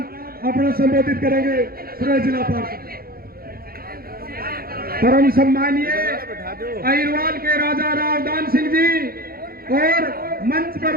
अपना संबोधित करेंगे। सुरेश जिला पार्षद। परम सम्मानीय अहिरवाल के राजा रावदान सिंह जी और मंच पर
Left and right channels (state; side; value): late; left; 0.44 ms